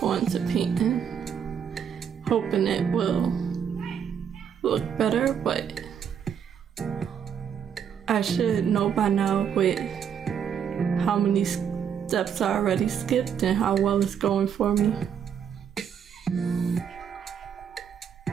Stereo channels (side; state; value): left; quieter; 8.0 dB